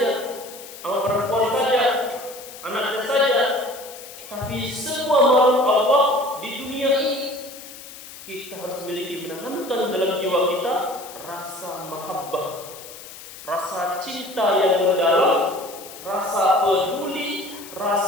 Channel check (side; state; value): left; noise; hiss, 15 dB below the sound